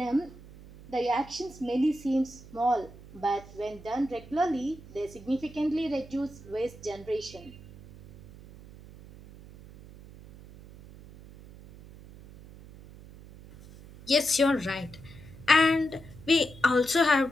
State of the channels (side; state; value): right; noise; hum, 18 dB below the sound